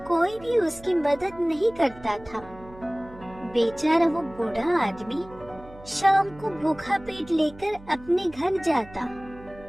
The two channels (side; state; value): right; noise; hum, 20 dB below the sound